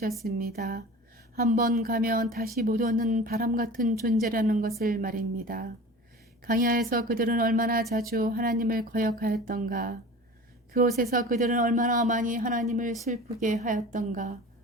한번 가면 다시 못 오는 바람 같은 존재라는 것을 말입니다. 광야에서 그들은 얼마나 자주 하나님을 거역하였던가. 그곳에서 그들은 얼마나 많이 하나님을 슬프게 하였던가.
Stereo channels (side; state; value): both; normal; correlation 0.38